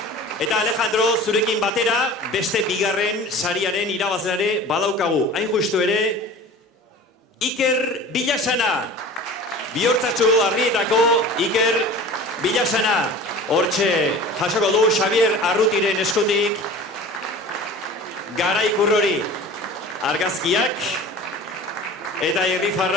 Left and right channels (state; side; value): normal; both; correlation 0.39